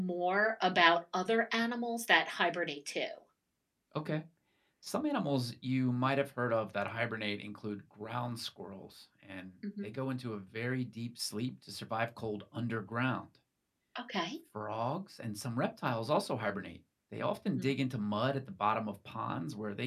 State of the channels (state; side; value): identical; both; correlation 1.00